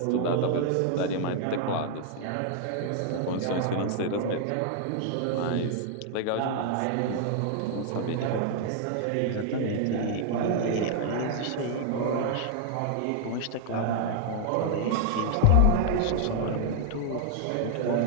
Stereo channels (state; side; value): different; both; correlation -0.01